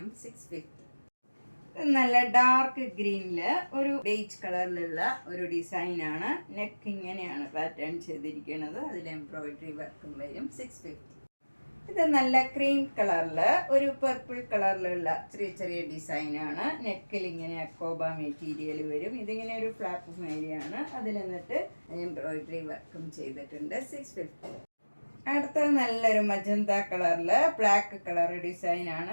650. നല്ല ഡാർക്ക് ഗ്രീനിൽ ഒരു ബേജ് കളറിലുള്ള ഒരു ഡിസൈനാണ്. നെക്ക് ഇങ്ങനെയാണ് പാറ്റേൺ ചെയ്തിരിക്കുന്നത്, അതിൽ എംബ്രോയിഡറി വർക്കും വരും 650. ഇത് നല്ല ക്രീം കളറിൽ ഒരു പർപ്പിൾ കളറിലുള്ള ചെറിയ ചെറിയ ഡിസൈനാണ്. നെക്കിൽ ഇങ്ങനെ അക്കോബ മെറ്റീരിയൽ വരും. ഇതിങ്ങനെ ഒരു ഫ്ലാപ്പ് മേരിയാണ്, അതിൽ എന്നിട്ട് എംബ്രോയിഡറി വർക്കും ചെയ്തിട്ടുണ്ട് 650. അടുത്തത് നല്ലൊരു മജന്ത കളറിൽ ബ്ലാക്ക് കളർ ഡിസൈനാണ്.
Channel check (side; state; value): both; inverted; correlation -1.00